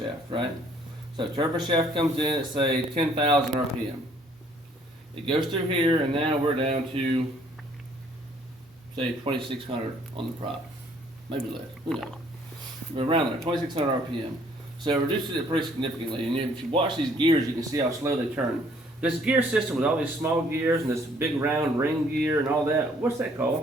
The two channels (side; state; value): both; normal; correlation 0.62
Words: right? So turbine shaft comes in at say 10,000 RPM. It goes through here and now we're down to say 2,600 on the prop. Maybe less, who knows? We're around there, 2,600 RPM. So it reduces it pretty significantly. And if you watch these gears, you can see how slow they turn. This gear system with all these small gears and this big round ring gear and all that, what's that